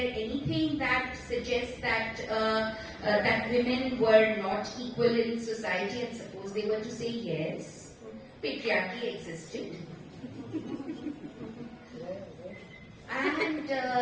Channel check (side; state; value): both; identical; correlation 1.00